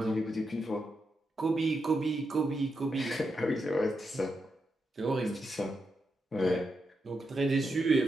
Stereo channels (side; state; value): both; normal; correlation 0.85